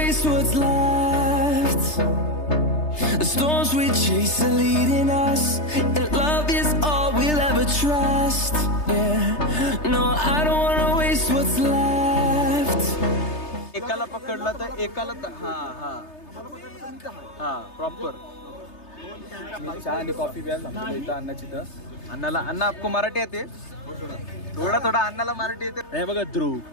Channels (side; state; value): right; late; 3.3 ms